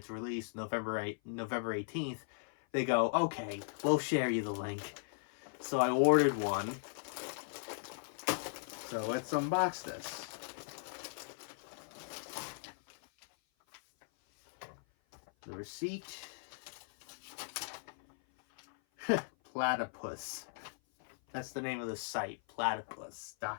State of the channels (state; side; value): silent; right; 53 dB below the other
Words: release, November 18th, they go, okay, we'll share you the link. So I ordered one. So let's unbox this. The receipt. Platypus. That's the name of the site,